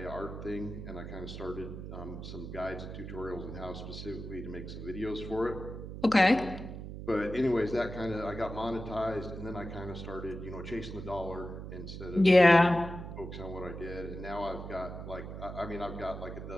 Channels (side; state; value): right; noise; hum, 9 dB below the sound